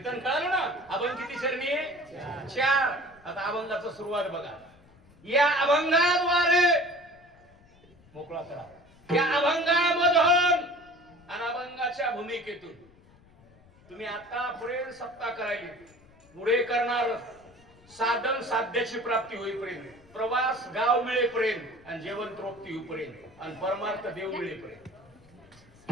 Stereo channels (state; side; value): noise; left; rumble, 27 dB below the sound